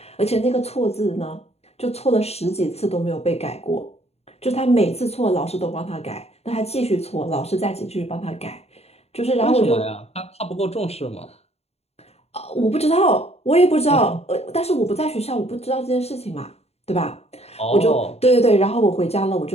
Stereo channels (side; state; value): right; late; 0.30 ms